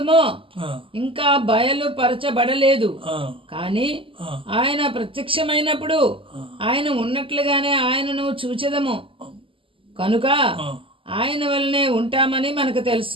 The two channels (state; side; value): late; left; 0.25 ms